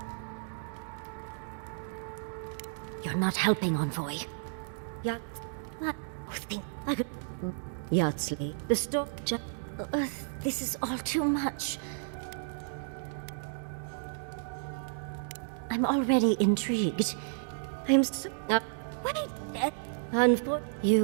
You're not helping, Envoy. Yeah. I could... Yardsley, the store... this is all too much. I'm already intrigued. I'm so... wait! For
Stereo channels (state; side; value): silent; left; digital silence